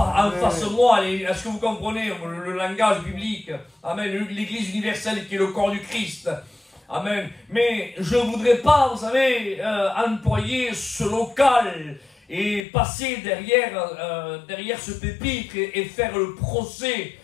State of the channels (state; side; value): drops out; right; at 12.7 s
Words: de moi. Est-ce que vous comprenez le langage biblique? Amen, l'église universelle qui est le corps du Christ. Amen. Mais je voudrais pas, vous savez, employer ce local et passer derrière ce pupitre et faire le procès